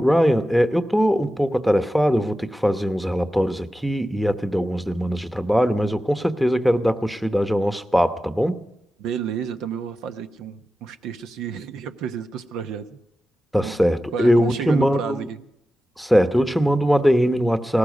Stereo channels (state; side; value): normal; both; correlation 0.93